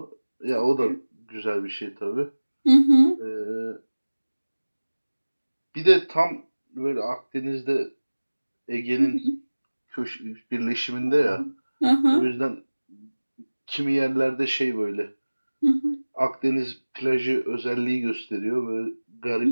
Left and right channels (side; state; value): both; inverted; correlation -1.00